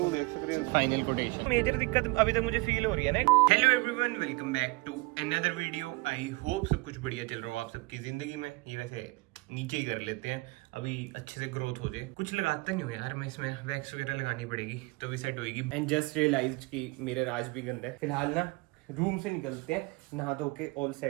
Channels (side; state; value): left; quieter; 24.9 dB